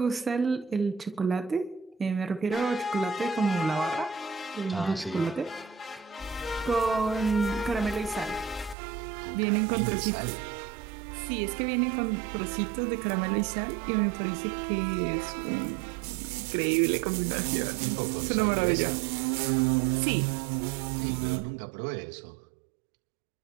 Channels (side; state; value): left; drops out; at 8.8 s